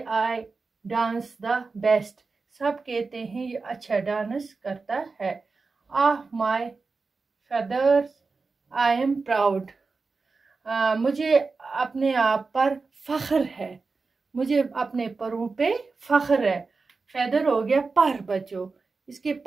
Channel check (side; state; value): left; quieter; 4.2 dB